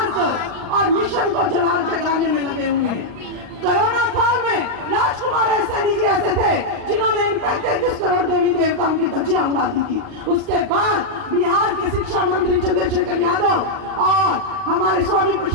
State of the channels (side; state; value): left; late; 40 ms